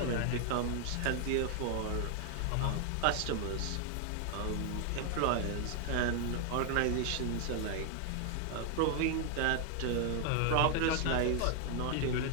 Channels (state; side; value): different; both; correlation 0.00